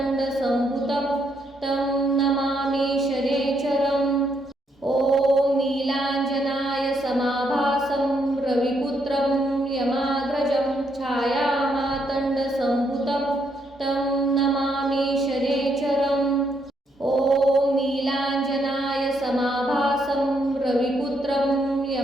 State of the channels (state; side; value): normal; both; correlation 0.75